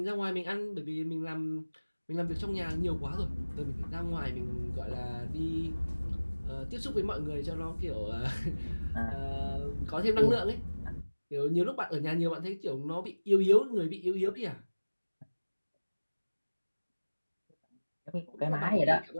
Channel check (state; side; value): inverted; both; correlation -1.00